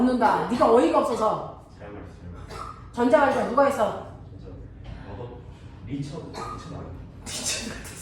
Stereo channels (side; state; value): both; identical; correlation 1.00